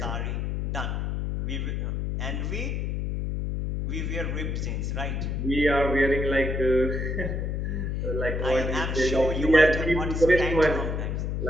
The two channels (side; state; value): left; noise; hum, 1 dB below the sound